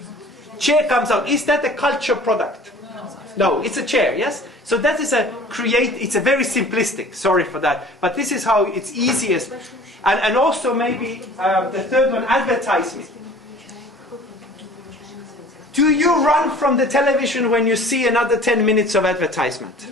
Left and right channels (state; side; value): normal; both; correlation 0.46